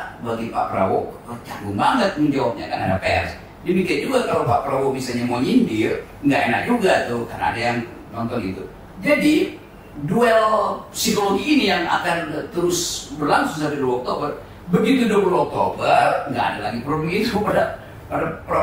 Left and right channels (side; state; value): both; identical; correlation 1.00